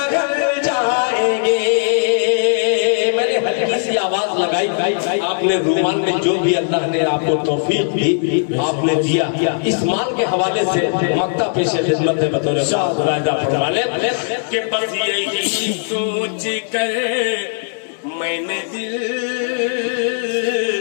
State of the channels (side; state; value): right; silent; digital silence